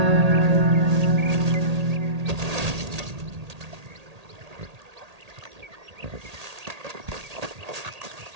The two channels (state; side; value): late; left; 1.8 ms